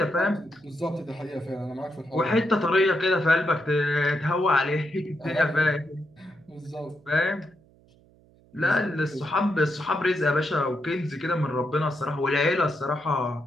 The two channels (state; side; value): noise; right; hum, 29 dB below the sound